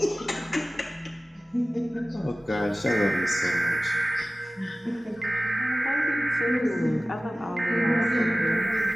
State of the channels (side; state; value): both; normal; correlation 0.97